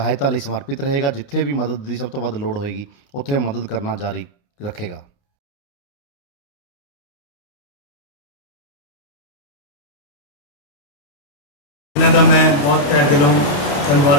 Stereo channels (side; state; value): right; late; 29 ms